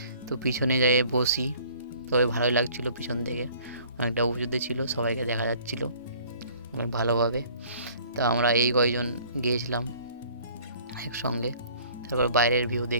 তো পিছনে যেয়ে বসি, তবে ভালোই লাগছিলো। পিছন থেকে অনেকটা উঁচুতে ছিল, সবাইকে দেখা যাচ্ছিলো অনেক ভালোভাবে। তো আমরা এই কয়জন গিয়েছিলাম একসঙ্গে। তারপর বাইরের ভিউ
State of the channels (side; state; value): both; inverted; correlation -0.54